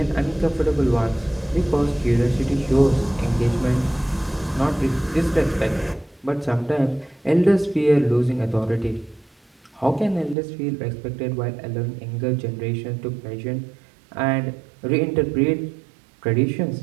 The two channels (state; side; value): drops out; left; at 10.4 s